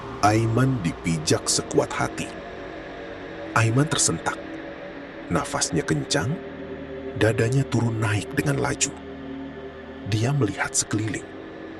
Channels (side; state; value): both; identical; correlation 1.00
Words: Aiman dipijak sekuat hati. Aiman tersentak. Nafasnya kencang, dadanya turun naik dengan laju. Dia melihat sekeliling.